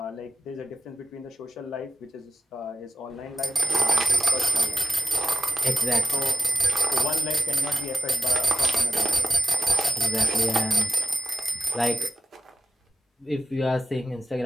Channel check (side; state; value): both; normal; correlation 0.92